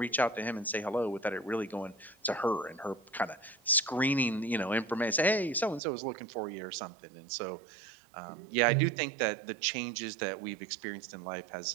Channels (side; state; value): left; drops out; at 5.8 s